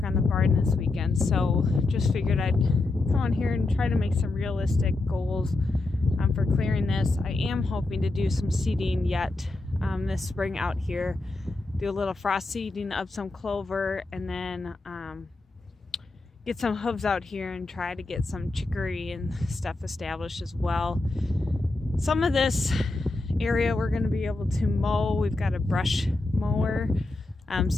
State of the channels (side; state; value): right; quieter; 3.1 dB